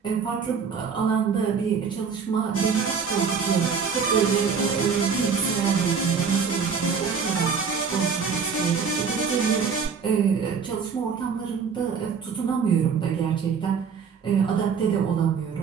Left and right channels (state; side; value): quieter; left; 6.0 dB